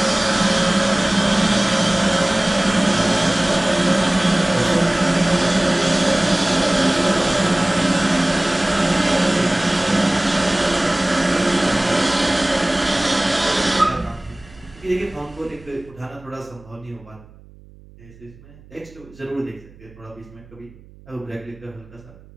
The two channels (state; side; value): noise; right; hum, 24 dB below the sound